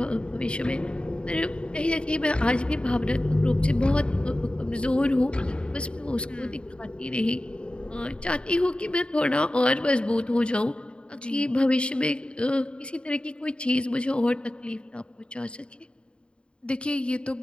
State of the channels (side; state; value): right; late; 0.054 ms